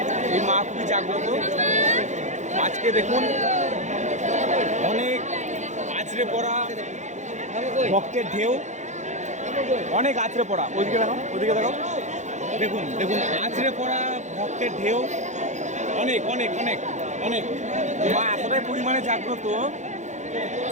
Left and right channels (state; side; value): late; left; 0.34 ms